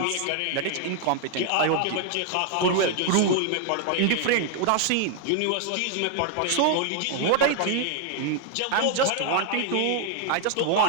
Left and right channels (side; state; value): both; different; correlation 0.00